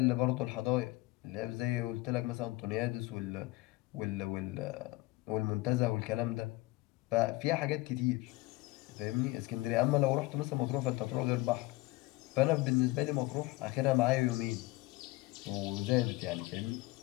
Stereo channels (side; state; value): right; quieter; 20.5 dB